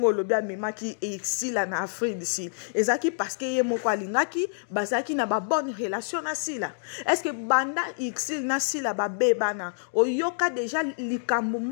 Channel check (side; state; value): right; silent; digital silence